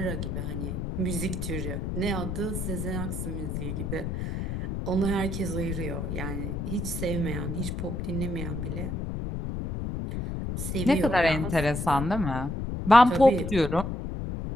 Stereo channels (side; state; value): left; noise; rumble, 3 dB below the sound